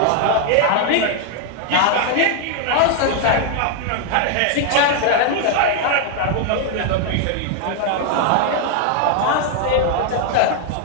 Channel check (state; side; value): different; both; correlation 0.00